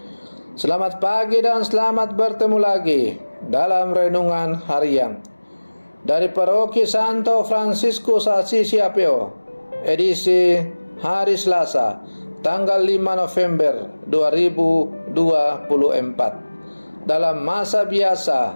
selamat pagi dan selamat bertemu lagi dalam renungan harian dari Paroki Santo Fransiskus Assisi Apio, edisi hari Selasa, tanggal 5 November 2024, dalam masa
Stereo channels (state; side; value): inverted; both; correlation -1.00